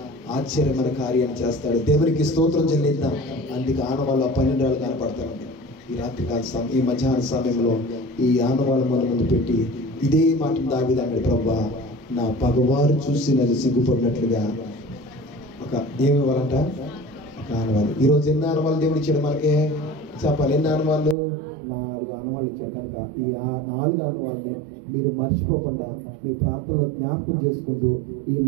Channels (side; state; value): left; drops out; at 21.2 s